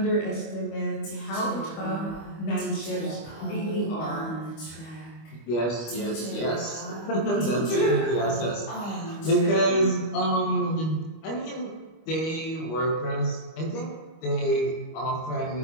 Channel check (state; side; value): late; right; 25 ms